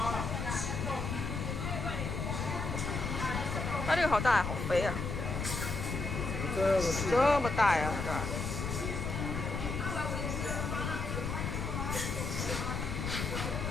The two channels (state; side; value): noise; left; rumble, 3 dB below the sound